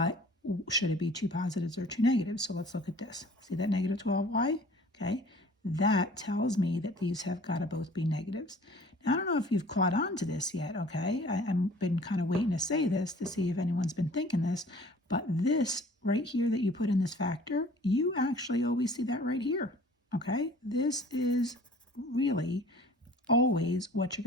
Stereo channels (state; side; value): normal; both; correlation 0.49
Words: should it be 2 positives or 2 negatives? So let's look at this. See that negative 12y? Okay, that tells me that these have got to both be negatives. Now, I don't know if you've caught on to this yet, okay? I've been kind of waiting to say this to see if anyone's been thinking this, but this right here that you put in this factor, you actually always see that right here, okay? This is really always what you're